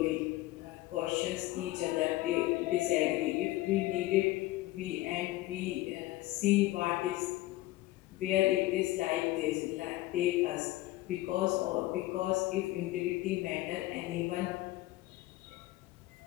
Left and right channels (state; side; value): quieter; right; 17.7 dB